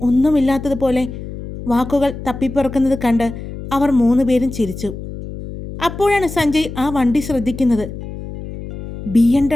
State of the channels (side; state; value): left; noise; hum, 10 dB below the sound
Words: ഒന്നുമില്ലാത്തതുപോലെ വാക്കുകൾ തപ്പിപ്പുറക്കുന്നത് കണ്ട് അവർ 3 പേരും ചിരിച്ചു. അപ്പോഴാണ് സഞ്ജയ് ആ വണ്ടി ശ്രദ്ധിക്കുന്നത്.